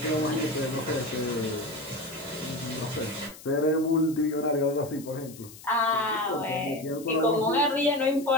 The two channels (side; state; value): left; noise; hiss, 18 dB below the sound